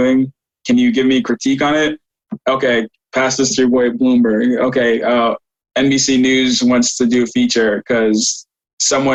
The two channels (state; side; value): identical; both; correlation 1.00